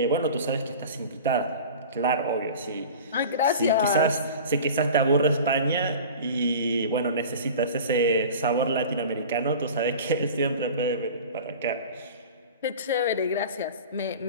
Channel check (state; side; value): inverted; both; correlation -0.37